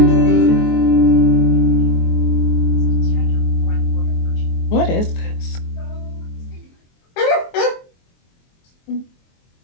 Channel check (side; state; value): right; late; 23 ms